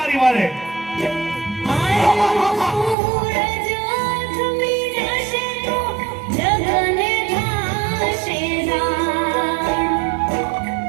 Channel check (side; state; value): left; drops out; at 3.0 s